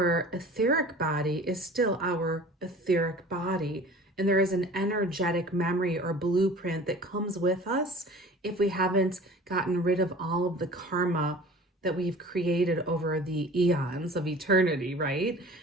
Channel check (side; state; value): both; normal; correlation 0.43